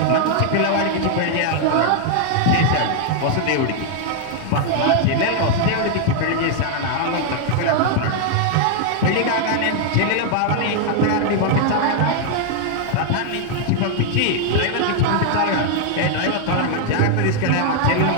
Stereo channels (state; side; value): different; both; correlation 0.00